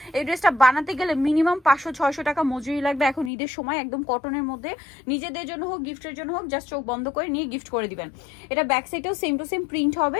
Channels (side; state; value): right; drops out; at 3.3 s